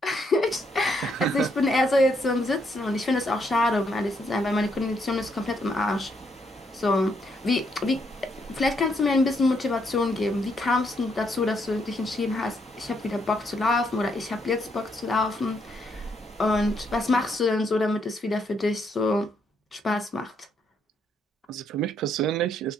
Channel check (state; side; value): normal; both; correlation 0.74